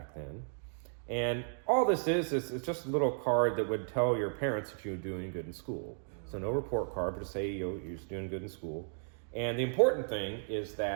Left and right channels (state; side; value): silent; left; digital silence